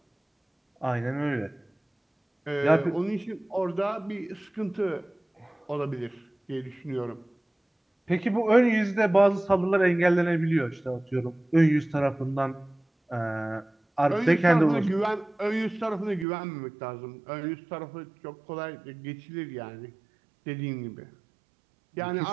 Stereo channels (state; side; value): drops out; left; at 16.2 s